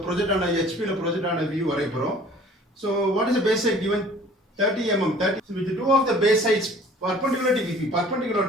project ஆன HP ல project ஆன view வரைய போறோம். So what is the base side given 30 mm 30. So with the two of the base sides perpendicular to VP, perpendicular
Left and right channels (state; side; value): normal; both; correlation 0.50